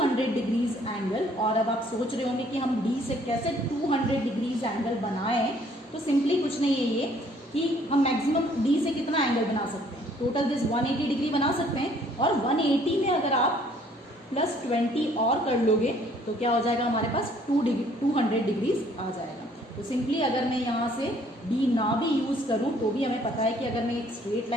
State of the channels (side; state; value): both; normal; correlation 0.61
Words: degrees angle, और अब आप सोच रहे होंगे कि हम डी से कैसे 200 डिग्रीज एंगल बनाएं, तो सिंपली कुछ नहीं है ये कि हम मैक्सिमम डी से कितना एंगल बना सकते हैं, टोटल दिस 180 डिग्री बना सकते हैं, और 180 में अगर आप +20 और कर लोगे तो क्या हो जाएगा, हमारे पास 200 डिग्रीज आ जाएगा। तो सिंपली अगर मैं यहाँ से डी ना भी यूज़ करूँ तो भी हमें पता है कि अगर मैं एक स्ट्रेट